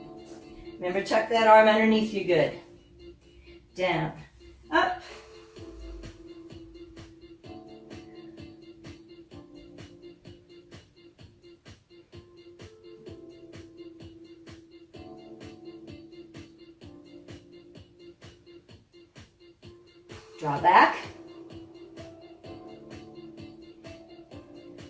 Remember, tuck that arm underneath you good. Down, up. Draw back.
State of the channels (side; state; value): both; identical; correlation 1.00